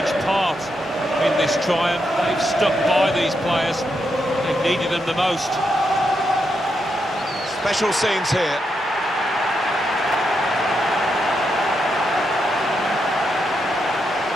part in this triumph. They've stuck by these players. They've needed them the most. Special scenes here.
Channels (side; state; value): both; normal; correlation 0.82